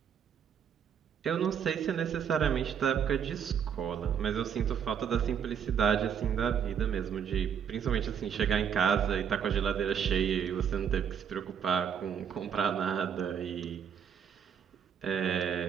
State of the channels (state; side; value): quieter; left; 8.0 dB